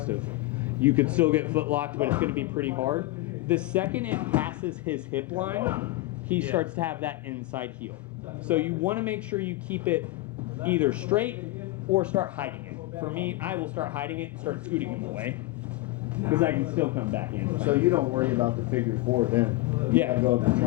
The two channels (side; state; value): right; quieter; 19.4 dB